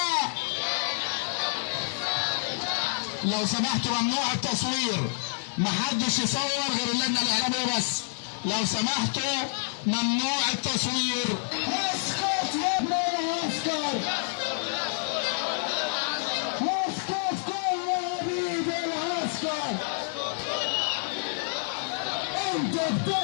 لو سمحتوا ممنوع التصوير، محدش يصور غير اللجنة الإعلامية بس. لو سمحتوا ممنوع التصوير. اسكت يا ابني، اسكت اسكت كل عبيد العسكر. انت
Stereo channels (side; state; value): right; silent; digital silence